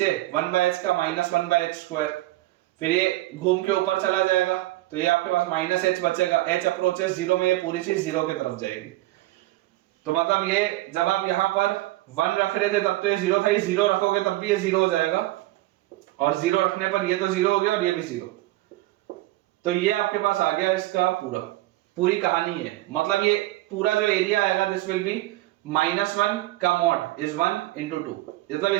1/h का -1/h², फिर ये घूम के ऊपर चला जाएगा, तो ये आपके पास -h बचेगा, h अप्रोचेस 0 में ये पूरी चीज 0 की तरफ जाएगी। तो मतलब ये जब आप यहां पर 1 रख रहे थे तब तो ये 0 था, ये 0 रखोगे तब भी ये 0 हो जाएगा, और 0 रखने पर ये तो 0 हो गया और ये भी 0। तो ये आपके पास आ गया इसका पूरी कहानी है। मतलब ये पूरा जो एरिया आएगा दिस विल बी -1 का मॉड इज 1 into 2, मतलब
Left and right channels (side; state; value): left; quieter; 17.7 dB